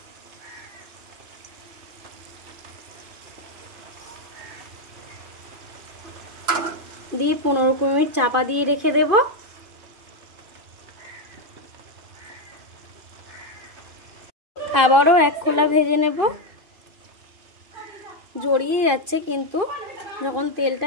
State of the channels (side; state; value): left; late; 2.5 ms